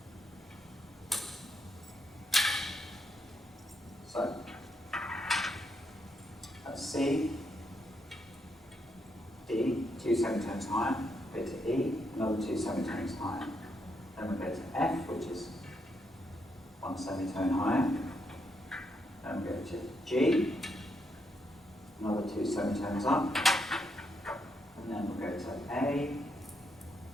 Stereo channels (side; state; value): both; normal; correlation 0.78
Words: So, that's C, D, 2 semitones higher, go to E, another 2 semitones higher. Then we go to F, which is 1 semitone higher. Then we go to G, another 2 semitones up. And then we'll go to A,